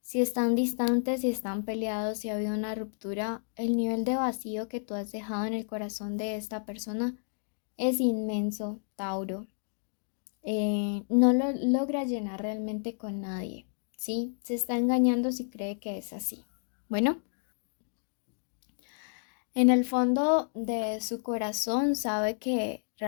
si están distantes, si están peleados, si ha habido una ruptura, el nivel de vacío que tú has dejado en el corazón de esta persona es inmenso, Tauro. No lo logra llenar realmente con nadie. Sí, se está engañando si cree que es así. Bueno, en el fondo de su corazón sabe que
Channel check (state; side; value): silent; right; digital silence